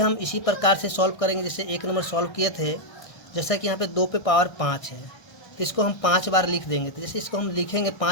इसी प्रकार से सॉल्व करेंगे जैसे 1 नंबर सॉल्व किए थे। जैसा कि यहाँ पे 2 पे पावर 5 है, तो इसको हम 5 बार लिख देंगे। तो जैसे इसको हम लिखेंगे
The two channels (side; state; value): right; late; 1.3 ms